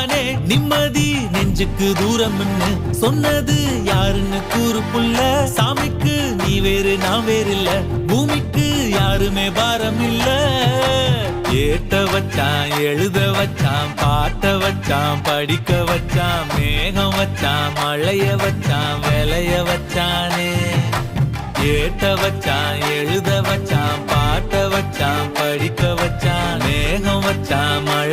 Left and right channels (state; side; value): identical; both; correlation 1.00